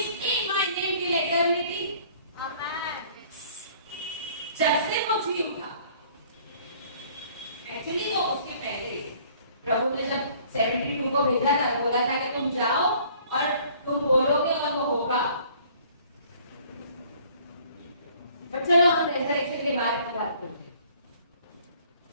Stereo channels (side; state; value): both; inverted; correlation -0.56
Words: in my name till eternity. जब से वो जी उठा, एक्चुअली तो उसके पहले प्रभु ने जब 72 को भेजा था, बोला था कि तुम जाओ और तुम बोलोगे और वो होगा। बट चलो हम रेजरेक्शन के बारे में बात करते हैं।